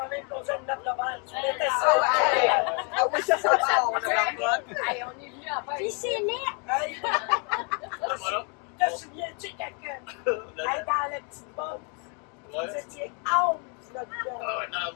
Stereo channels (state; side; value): quieter; right; 36.6 dB